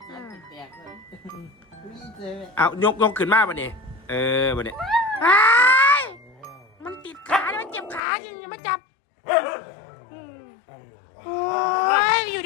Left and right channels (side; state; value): right; drops out; at 8.0 s